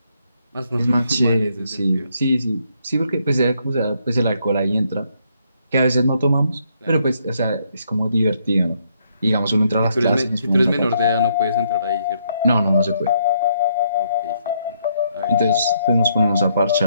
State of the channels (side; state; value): both; inverted; correlation -0.73